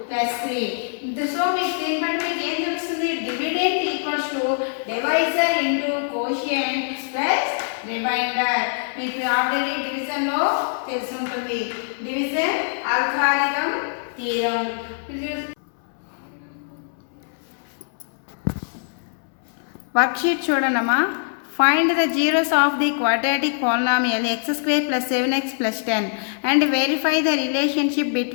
+3. సో మీకు దీన్ని బట్టి మీకు ఏం తెలుస్తుంది dividend equals to divisor into quotient plus remainder. మీకు ఆల్రెడీ డివిజన్ లో తెలిసి ఉంటుంది. Division algorithm theorem. వర్క్షీట్ చూడండమ్మా. Find the zeros of the quadratic polynomial x² plus 7x plus 10 and verify the relationship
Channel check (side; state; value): right; silent; 63 dB below the other